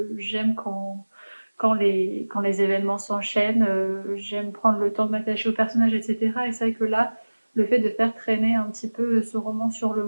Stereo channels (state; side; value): inverted; both; correlation -1.00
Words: quand les événements s'enchaînent, j'aime prendre le temps de m'attacher au personnage, etc. Et c'est vrai que là, le fait de faire traîner un petit peu ce roman sur le